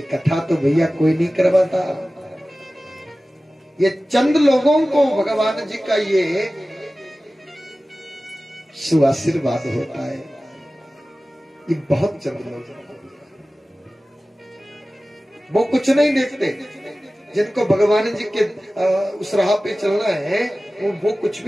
कथा तो भैया कोई नहीं करवाता, ये चंद लोगों को भगवान जी का ये सुआशीर्वाद होता है। ये बहुत चंद लोग, वो कुछ नहीं देखते, जिनको भगवान जी के उस राह पे चलना है वो कुछ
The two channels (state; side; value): normal; both; correlation 0.96